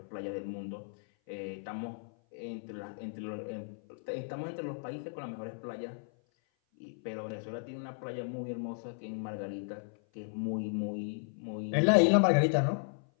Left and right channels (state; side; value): silent; right; 55 dB below the other